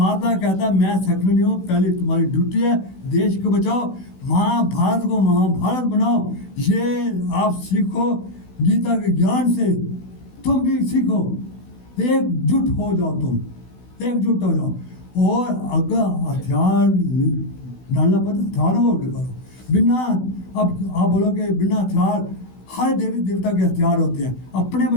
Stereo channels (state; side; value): late; right; 16 ms